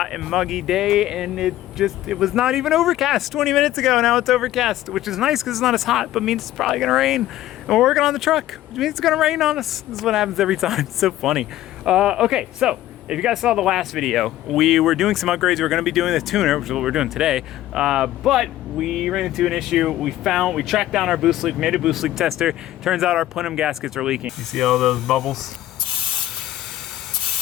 and muggy day, and it was not even overcast 20 minutes ago. Now it's overcast, which is nice because it's not as hot, but means it's probably gonna rain. And we're working on the truck, which means it's gonna rain on us. This is what happens every time. It's so funny. Okay, so if you guys saw the last video, we were doing some upgrades. We were gonna be doing the tuner, which is what we're doing today, but we ran into an issue. We tracked down our boost leak, made a boost leak tester. Turns out our plenum gaskets are leaking. You see all those bubbles?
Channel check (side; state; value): right; quieter; 14.1 dB